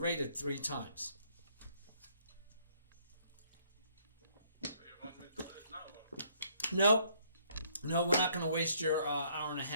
3 times. You want me to do it now? No, we're not going to waste your hour and a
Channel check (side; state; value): both; inverted; correlation -0.66